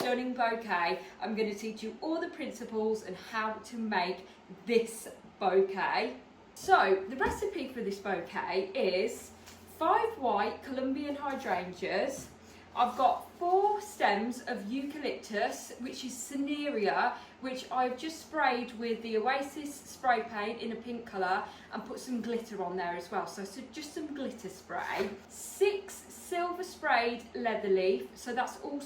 bouquet. I'm going to teach you all the principles and how to make this bouquet. So the recipe for this bouquet is 5 white Colombian hydrangeas. I've got 4 stems of eucalyptus, which is Cinerea, which I've just sprayed with the Oasis spray paint in a pink colour and put some glitter on there as well. So just some glitter spray. 6 silver sprayed leather leaf, so that's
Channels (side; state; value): both; identical; correlation 1.00